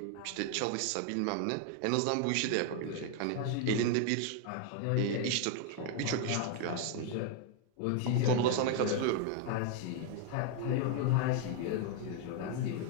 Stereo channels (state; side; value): different; both; correlation 0.00